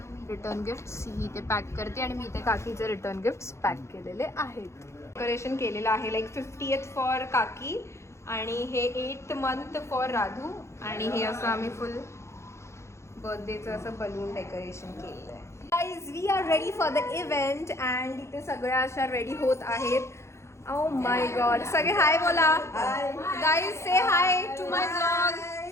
रिटर्न गिफ्ट्स ही इथे पॅक करते आणि मी इथे काकीचे रिटर्न गिफ्ट्स पॅक केलेले आहेत. डेकोरेशन केलेलं आहे, लाईक 50th फॉर काकी आणि हे 8th month फॉर राधू. आणि हे असं आम्ही फुल बर्थडेचं असं बलून डेकोरेशन केलेलं आहे. Guys, we are ready for the event and इथे सगळ्या अशा रेडी होत आहेत. Oh my god. सगळे हाय बोला. Guys say hi to my blog.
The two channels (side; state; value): right; late; 0.13 ms